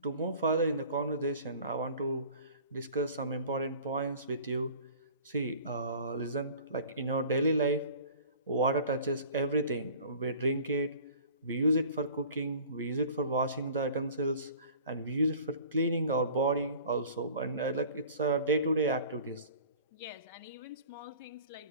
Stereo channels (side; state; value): both; inverted; correlation -0.45